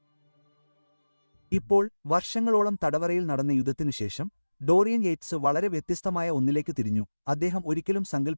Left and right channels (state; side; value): inverted; both; correlation -1.00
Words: ഇപ്പോൾ വർഷങ്ങളോളം തടവറയിൽ നടന്ന യുദ്ധത്തിനുശേഷം ഡോറിയൻ യേറ്റ്സ് വളരെ വ്യത്യസ്തമായ ഒന്നിലേക്ക് തിരിഞ്ഞു. അദ്ദേഹം ഒരിക്കലും